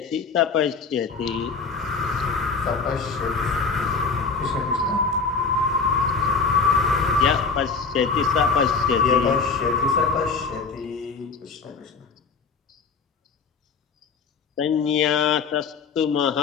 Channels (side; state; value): right; quieter; 4.9 dB